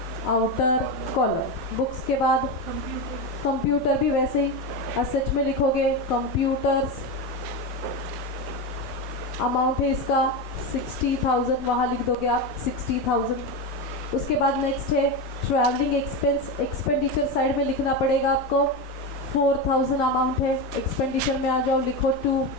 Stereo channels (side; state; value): both; normal; correlation 0.16